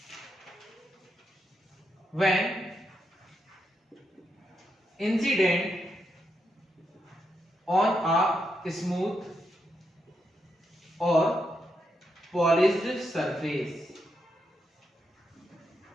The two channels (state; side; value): normal; both; correlation 0.82